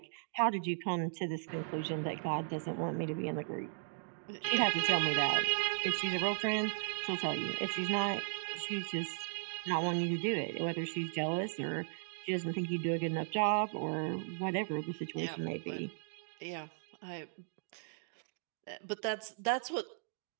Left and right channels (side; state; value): left; silent; digital silence